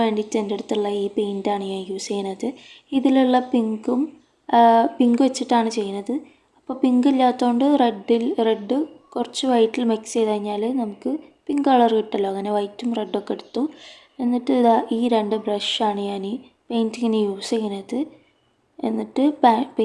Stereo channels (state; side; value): identical; both; correlation 1.00